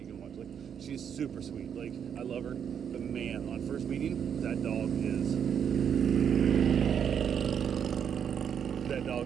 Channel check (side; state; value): left; quieter; 8.0 dB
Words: can watch. Like, she's super sweet. Like, I love her. But man, on first meeting, that dog is